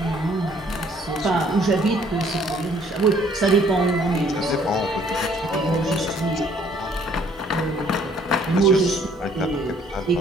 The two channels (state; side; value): normal; both; correlation 0.61